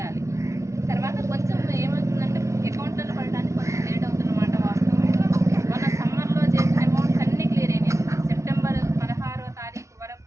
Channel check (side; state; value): left; late; 0.14 ms